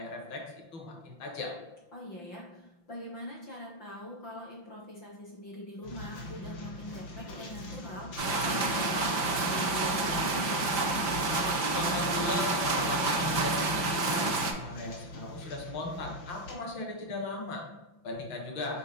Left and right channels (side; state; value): right; late; 5.8 ms